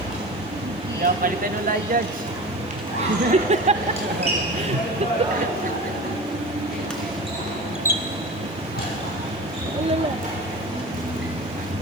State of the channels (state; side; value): noise; left; hiss, 29 dB below the sound